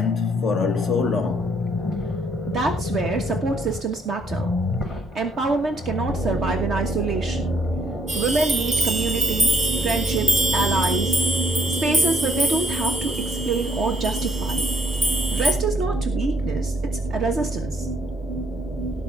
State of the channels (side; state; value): both; normal; correlation 0.66